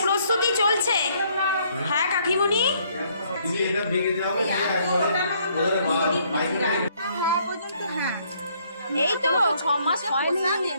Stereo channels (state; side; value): inverted; both; correlation -0.66